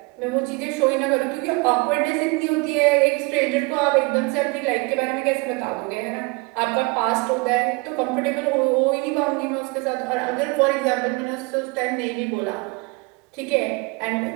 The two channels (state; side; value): quieter; left; 27.9 dB